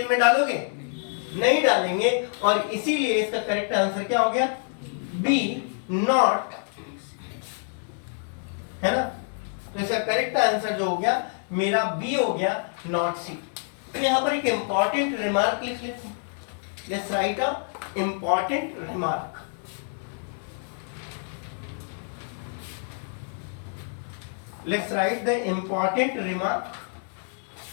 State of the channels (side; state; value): right; silent; 60 dB below the other